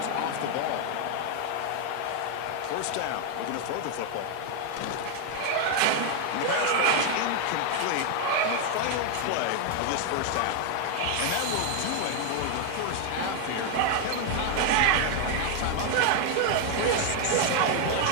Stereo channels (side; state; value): both; different; correlation 0.00